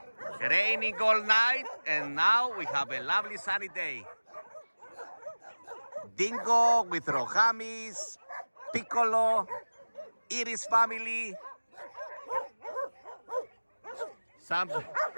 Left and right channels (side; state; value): both; inverted; correlation -1.00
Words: Raining all night, and now we have a lovely sunny day. Dingo with Rohamis, Piccolo, Iris family.